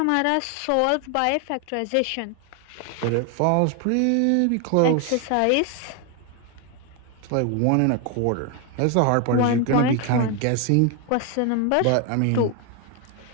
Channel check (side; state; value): both; different; correlation 0.01